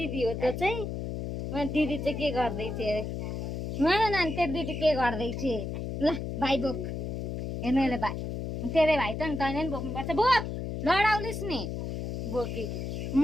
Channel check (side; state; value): left; noise; hum, 4 dB below the sound